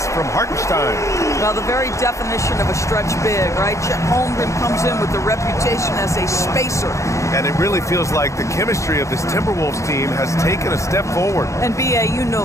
from Hartenstein. Well, the very definition of a stretch big, right? Chet Holmgren comes in with the reputation as a spacer. And it really feels like the chemistry of this Timberwolves team has taken a step forward. And B.A., you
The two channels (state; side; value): late; right; 0.15 ms